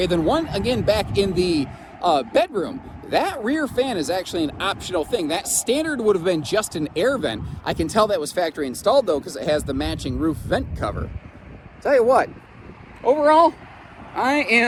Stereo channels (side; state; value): both; identical; correlation 1.00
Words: then one again back in the bedroom. That rear fan is actually an optional thing. That standard would have been just an air vent. I can tell that was factory installed though, because it has the matching roof vent cover. Tell you what, overall, I